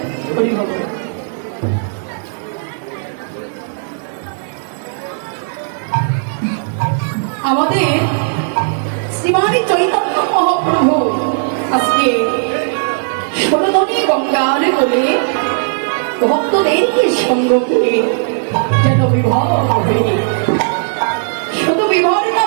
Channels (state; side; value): silent; left; digital silence